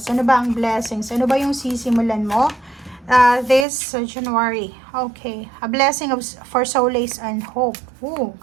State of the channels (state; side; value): drops out; left; at 3.7 s